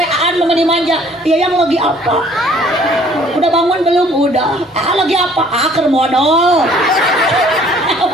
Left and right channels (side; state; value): both; normal; correlation 0.57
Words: lu dimanja. Iya yang lagi apa? Udah bangun belum? Udah. Lagi apa? Keur modal.